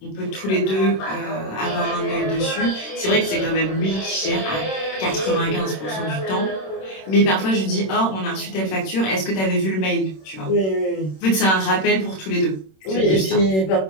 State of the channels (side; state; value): right; late; 26 ms